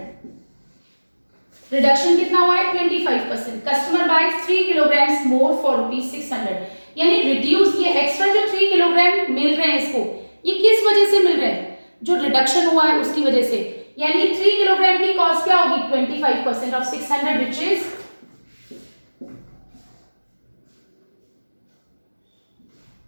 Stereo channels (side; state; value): both; inverted; correlation -1.00